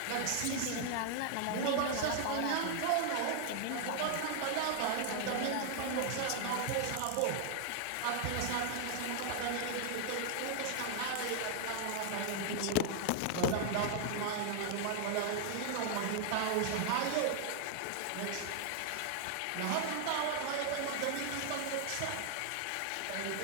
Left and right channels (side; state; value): both; different; correlation 0.00